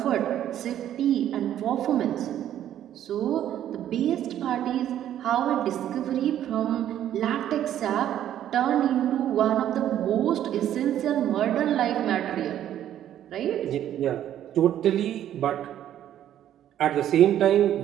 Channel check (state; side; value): quieter; left; 11.2 dB